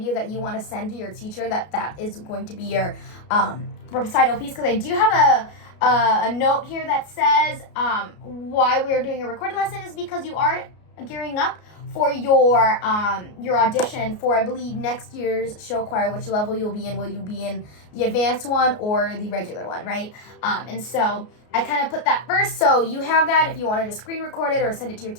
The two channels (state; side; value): late; right; 33 ms